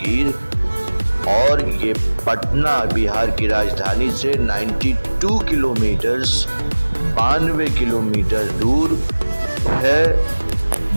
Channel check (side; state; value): both; inverted; correlation -1.00